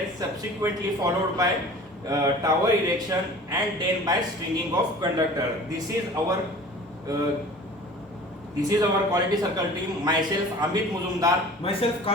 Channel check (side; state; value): both; normal; correlation 0.43